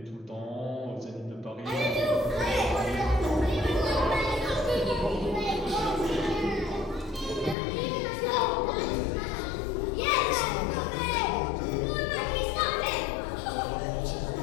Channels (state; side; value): drops out; right; at 7.6 s